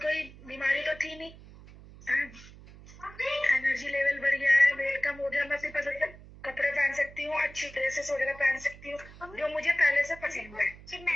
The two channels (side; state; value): right; noise; hum, 19 dB below the sound